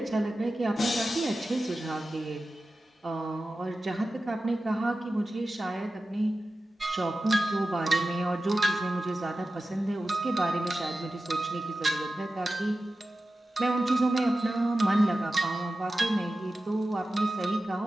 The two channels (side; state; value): both; normal; correlation 0.94